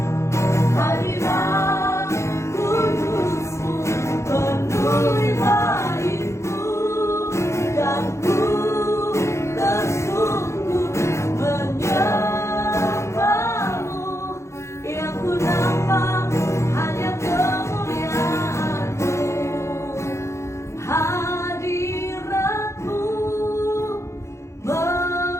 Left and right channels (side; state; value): right; late; 0.14 ms